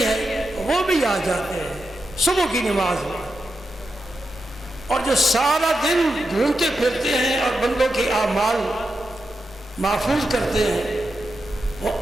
ہے وہ بھی آ جاتے ہیں صبح کی نماز میں، اور جو سارا دن گھومتے پھرتے ہیں اور بندوں کے اعمال محفوظ کرتے ہیں، وہ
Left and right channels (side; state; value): both; normal; correlation 0.88